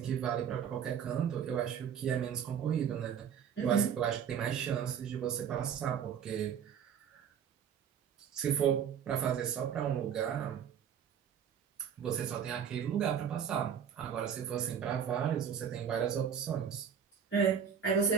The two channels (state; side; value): quieter; left; 8.1 dB